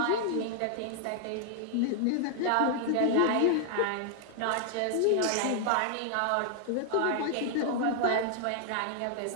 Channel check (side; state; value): both; different; correlation 0.00